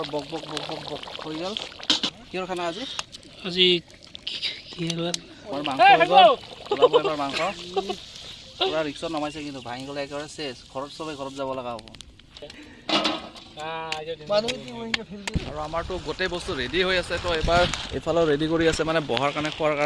বক বক বক বক হৈ গ'ল। কিহৰ খানা আজি? আমাৰ মাংস হৈ গ'ল। ওলাব এবাৰ মাংস। পূৰা ৰিক্সত নমাইছে, কিন্তু ভাঙি গ'লে একেবাৰে চেচ। ঘৰত চবেই ঘৰত যাব লগা হ'ব। আৰু আমাৰতো গোটেই বস্তু ৰেডি হৈ আছে। তো এবাৰ এইফালেও ৰেডি কৰি আছে, মানে বহাৰ কাৰণে, খোৱাৰ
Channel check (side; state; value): both; identical; correlation 1.00